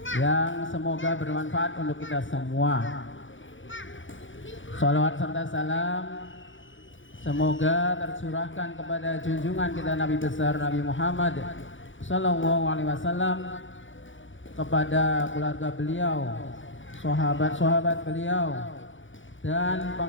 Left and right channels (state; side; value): late; right; 0.56 ms